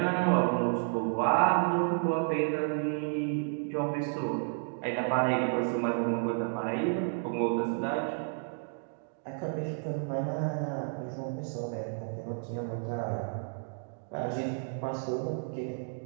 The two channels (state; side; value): silent; left; digital silence